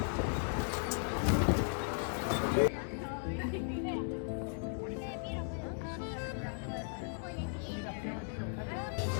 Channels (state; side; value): silent; right; 53 dB below the other